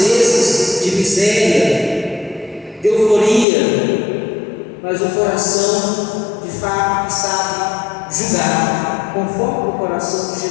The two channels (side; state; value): right; drops out; at 3.5 s